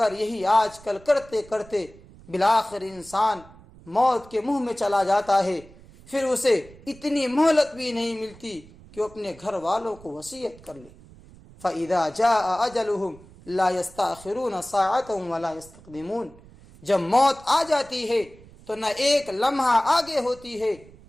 یہی آج کل کرتے کرتے بالآخر انسان موت کے منہ میں چلا جاتا ہے۔ پھر اسے اتنی مہلت بھی نہیں ملتی کہ وہ اپنے گھر والوں کو وصیت کر لے۔ فَإِذَا جَاءَ أَجَلُهُمْ لَا يَسْتَأْخِرُونَ سَاعَةً وَلَا يَسْتَقْدِمُونَ۔ جب موت آ جاتی ہے تو نہ ایک لمحہ آگے ہوتی ہے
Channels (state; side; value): noise; right; rumble, 22 dB below the sound